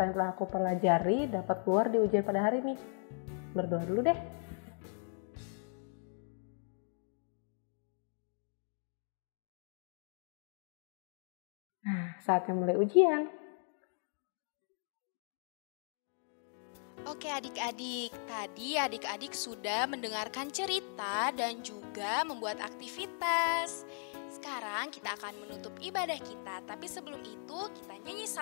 yang telah aku pelajari dapat keluar di ujian pada hari ini. Berdoa dulu deh. Nah, saatnya mulai ujian. Oke adik-adik, tadi adik-adik sudah mendengarkan cerita dan juga membuat aktivitas. Sekarang kita akan menutup ibadah kita, tapi sebelum itu kita nyanyi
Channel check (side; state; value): right; silent; 53 dB below the other